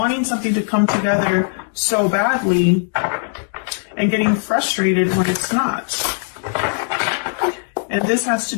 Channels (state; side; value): silent; right; digital silence